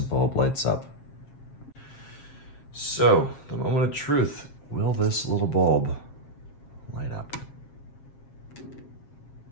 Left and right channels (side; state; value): right; late; 7.4 ms